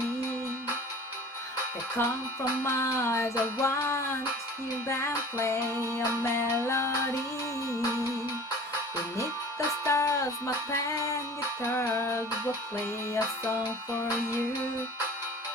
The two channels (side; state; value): both; normal; correlation 0.43